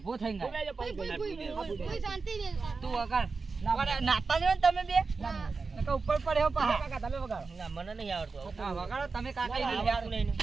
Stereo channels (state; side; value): quieter; left; 4.4 dB